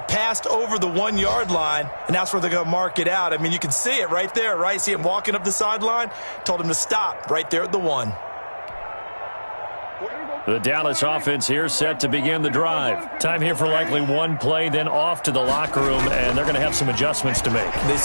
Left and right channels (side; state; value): both; inverted; correlation -1.00